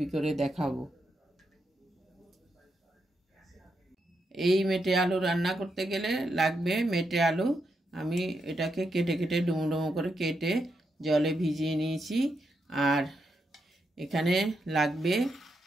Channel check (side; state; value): both; normal; correlation 0.83